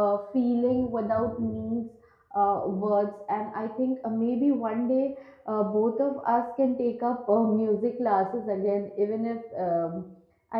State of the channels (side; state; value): both; identical; correlation 1.00